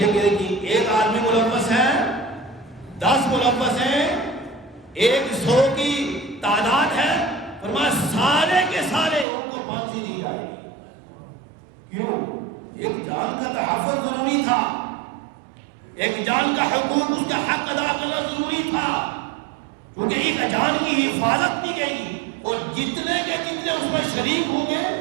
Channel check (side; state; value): left; drops out; at 9.2 s